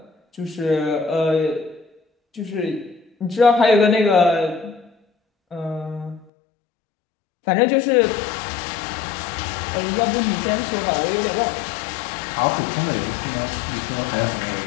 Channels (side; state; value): right; drops out; at 6.2 s